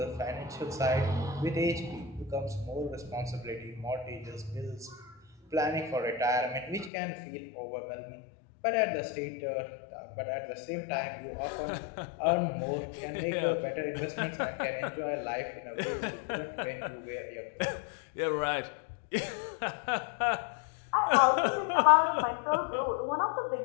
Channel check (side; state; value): right; drops out; at 6.9 s